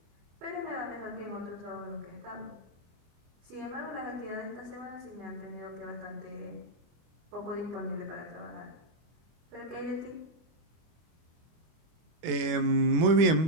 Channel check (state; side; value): late; left; 24 ms